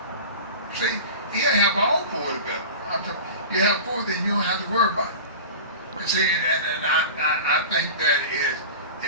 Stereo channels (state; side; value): inverted; both; correlation -0.33